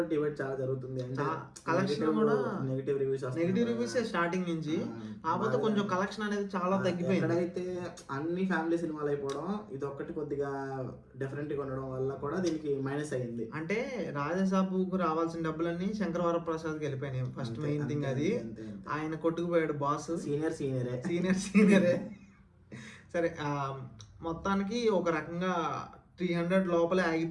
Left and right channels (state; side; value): identical; both; correlation 1.00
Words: డిబేట్ చాలా జరుగుతుంది. అంటే కలెక్షన్ కూడా నెగిటివ్ రివ్యూస్ స్టార్టింగ్ నుంచి, కాకపోతే కొంచెం కలెక్షన్ అనేది చాలా తగ్గిపోయింది. ఎక్కడైతే అన్ని ఫ్యామిలీ సినిమాలు అయిపోవడం, ఇది ఒక్కటి కొద్దిగా డిఫరెంట్ గా ఉండడం వల్ల కూడా దీనికి మైనస్ అయ్యింది. అంటే రాజాసాబుకు రావాల్సిన డబ్బులన్నీ శంకర్ వరప్రసాద్కి వెళ్ళిపోయినాయి. ఫస్ట్ మెయిన్ థింగ్ అది. ఆయన కొట్టుకుపోయాడు బాస్. సీనియరే. సరే మొత్తానికి ఒక రకంగా 300 లోపలే